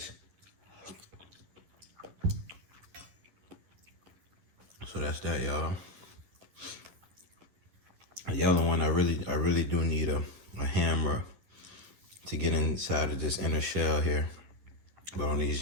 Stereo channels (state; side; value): late; left; 11 ms